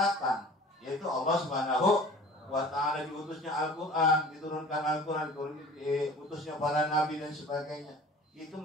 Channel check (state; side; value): normal; both; correlation 0.44